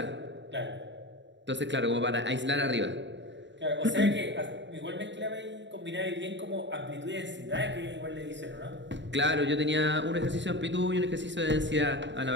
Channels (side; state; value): left; late; 0.53 ms